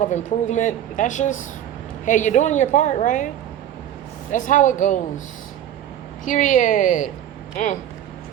of improvement. That's just, hey, you're doing your part, right? That's how it goes. Period.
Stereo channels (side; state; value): left; quieter; 10.9 dB